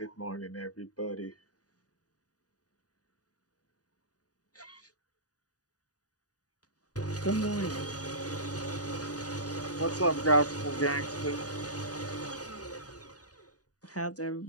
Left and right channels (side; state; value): right; late; 0.68 ms